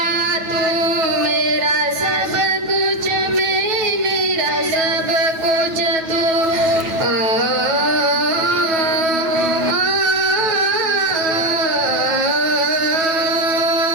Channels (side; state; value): left; late; 9.2 ms